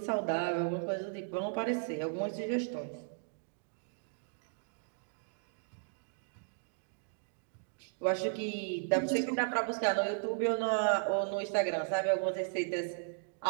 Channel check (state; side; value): silent; left; digital silence